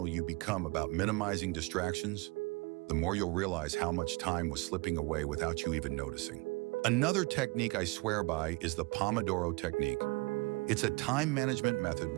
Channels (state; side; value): quieter; left; 26.0 dB